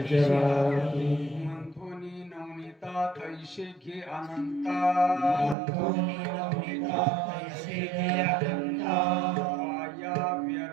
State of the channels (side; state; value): left; drops out; at 5.6 s